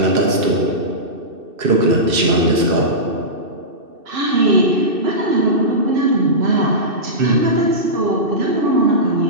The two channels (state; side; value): late; left; 2.6 ms